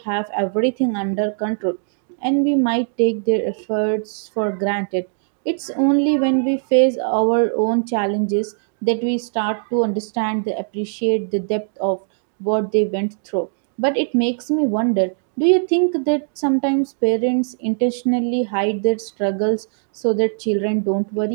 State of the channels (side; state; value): left; silent; digital silence